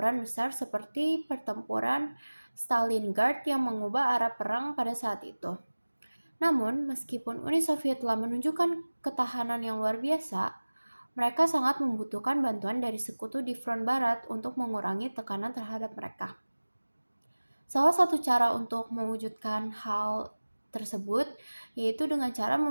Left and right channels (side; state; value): both; inverted; correlation -1.00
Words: besar seperti pertempuran Stalingrad yang mengubah arah perang pada saat itu. Namun, meskipun Uni Soviet telah menunjukkan ketahanan yang luar biasa, mereka sangat membutuhkan bantuan dari sekutu di front barat untuk mengurangi tekanan terhadap mereka. Salah satu cara untuk mewujudkan hal tersebut yaitu dengan cara